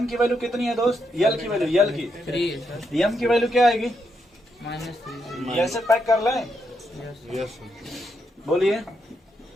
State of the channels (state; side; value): normal; both; correlation 0.80